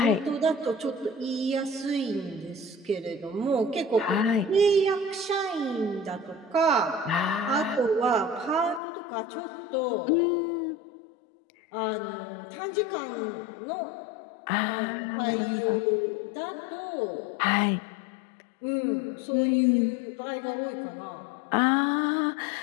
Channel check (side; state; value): right; drops out; at 8.8 s